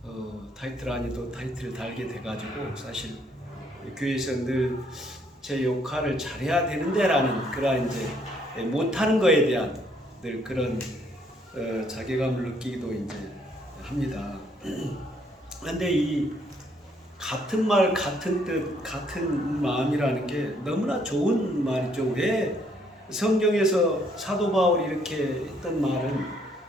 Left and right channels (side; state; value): both; normal; correlation 0.68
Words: 타이틀 아니 또 타이틀을 달게 돼가지고 사실 교회에서 늘 제 역할을 잘해야 되는데라는 그런 이제 못하는 거에 대한 늘 그런 자괴감을 느끼기도 이제 합니다. 그런데 이 같은 말, 같은 뜻, 같은 마음이라는 게 너무나 좋은 말이죠. 왜 성경에서 사도 바울이 이렇게 했던 말은